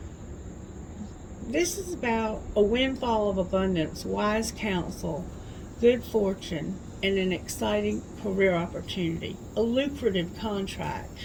This is about a windfall of abundance, wise counsel, good fortune, and an exciting career opportunity, a lucrative contract.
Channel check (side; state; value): both; identical; correlation 1.00